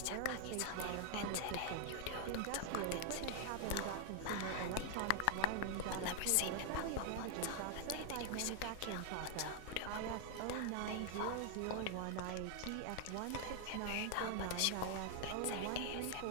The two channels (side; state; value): both; different; correlation 0.00